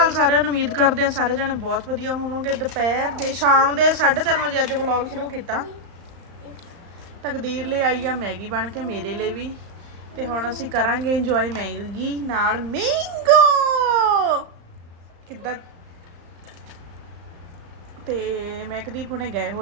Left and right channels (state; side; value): late; left; 35 ms